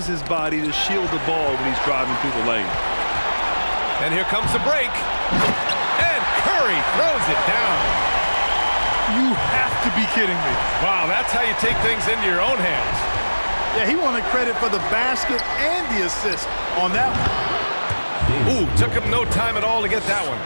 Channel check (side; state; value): both; inverted; correlation -1.00